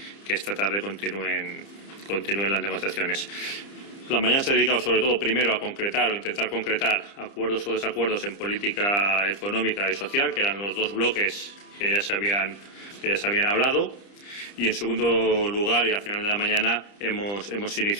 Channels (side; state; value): right; late; 30 ms